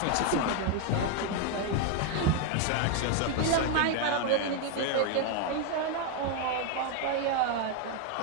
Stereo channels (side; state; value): both; different; correlation 0.01